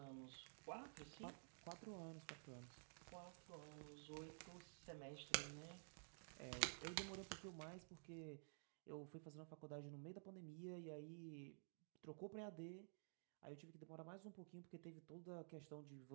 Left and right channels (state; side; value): silent; left; digital silence